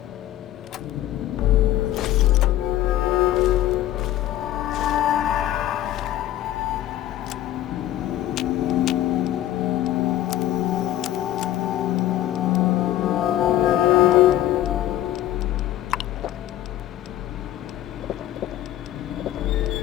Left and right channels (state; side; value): quieter; right; 13.2 dB